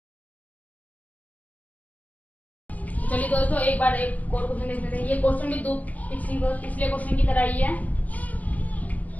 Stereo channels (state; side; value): late; right; 0.078 ms